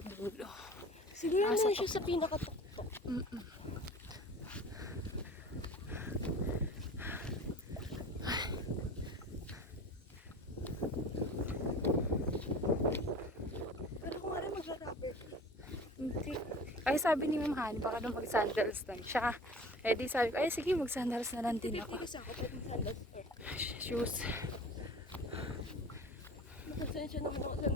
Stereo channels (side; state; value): both; normal; correlation 0.40